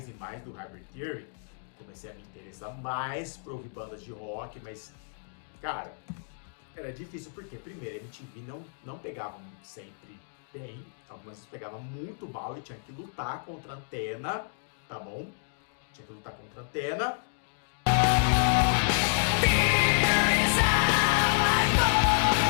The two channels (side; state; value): right; silent; digital silence